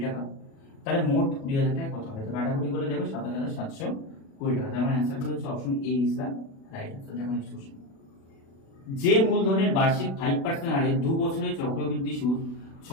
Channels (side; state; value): right; late; 36 ms